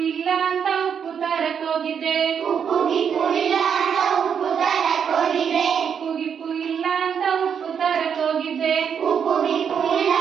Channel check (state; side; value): quieter; left; 7.5 dB